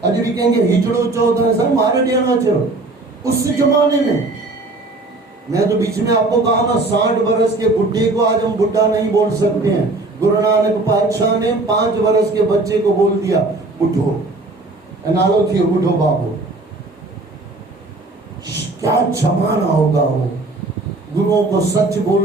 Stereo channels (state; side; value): quieter; left; 3.1 dB